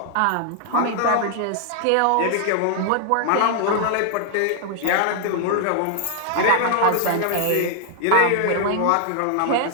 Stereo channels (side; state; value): both; different; correlation 0.00